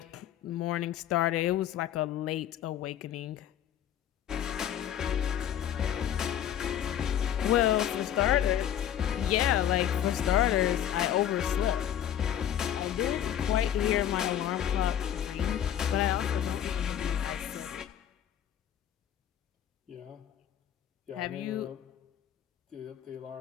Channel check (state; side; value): quieter; right; 10.4 dB